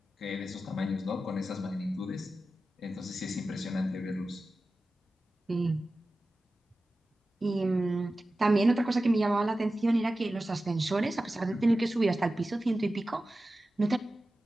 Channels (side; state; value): both; normal; correlation 0.94